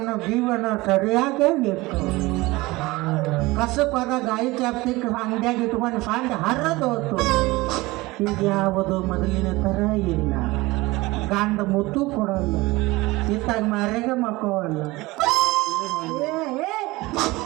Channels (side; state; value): left; quieter; 21.0 dB